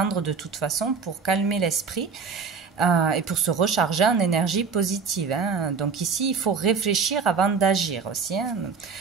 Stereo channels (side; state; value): left; quieter; 5.4 dB